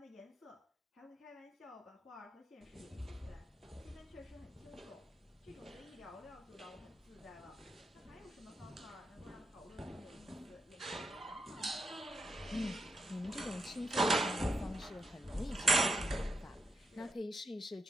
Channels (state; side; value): normal; both; correlation 0.82